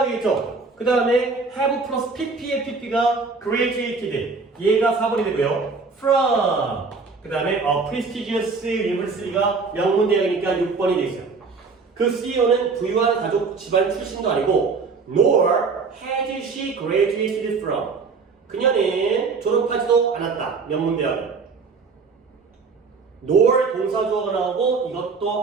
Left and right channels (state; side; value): quieter; left; 4.6 dB